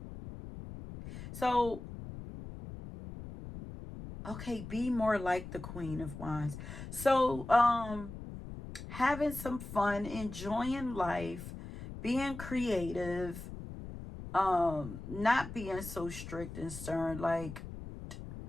So, okay, be more like the Queen of Wands. So, having some fun, enjoying life, being creative, not being so strict and stern, like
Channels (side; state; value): left; noise; rumble, 11 dB below the sound